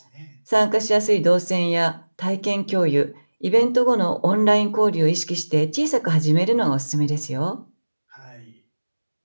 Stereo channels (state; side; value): inverted; both; correlation -1.00